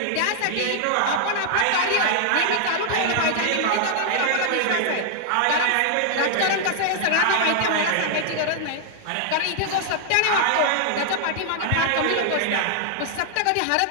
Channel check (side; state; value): both; different; correlation 0.00